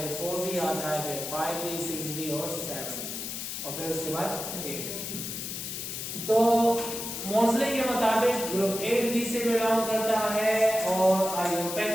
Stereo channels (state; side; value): noise; left; hiss, 6 dB below the sound